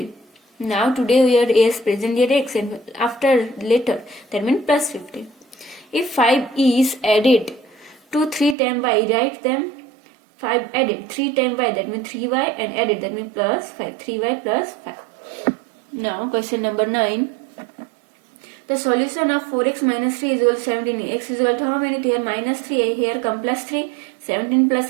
Now today we are as present year x and after later, that means plus 15. If 5 is added to 3 times y, write them. 5 added 3 times y, that means 3y, and added, that means plus 5. 3y plus 5. Now question number 9. The solution of 4x minus 3 is equal to 17. X is equal to how many? Here minus 3, here come plus 3. 17 plus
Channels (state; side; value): drops out; left; at 8.6 s